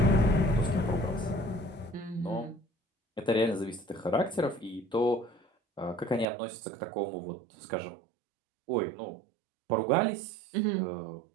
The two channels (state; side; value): drops out; left; at 6.2 s